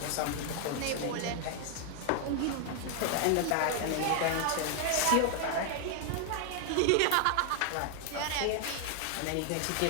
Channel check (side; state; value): both; different; correlation 0.00